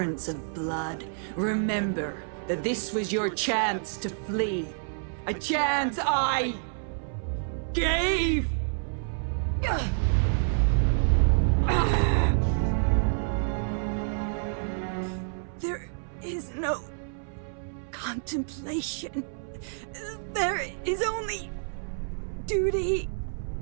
of blood, remember that this was your chance to flee. A chance I gave! There is no contemplation. There is only duty.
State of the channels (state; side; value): silent; left; 59 dB below the other